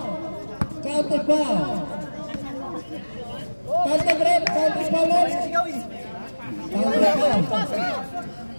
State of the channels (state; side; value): inverted; both; correlation -1.00